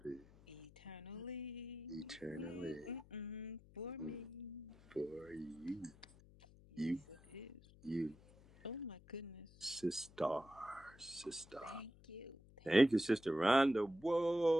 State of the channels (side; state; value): left; noise; hum, 23 dB below the sound